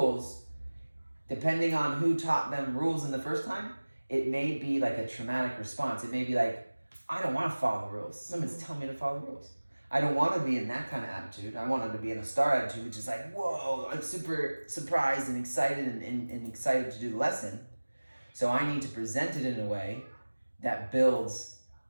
depending on who taught them rules in the first time, it may be like a traumatic response. It may be like, I don't want to follow the rules. Someone's telling me to follow the rules. I don't want to be in that kind of attitude. I want them to be in a star attitude, which is like, whoa, I'm super surprised and excited and excited to do the lesson. So I need to present it in a way that builds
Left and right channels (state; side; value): inverted; both; correlation -1.00